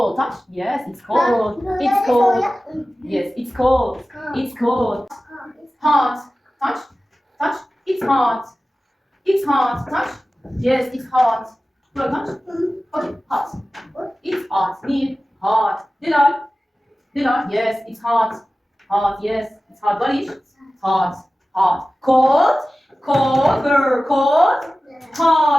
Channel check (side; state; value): both; normal; correlation 0.96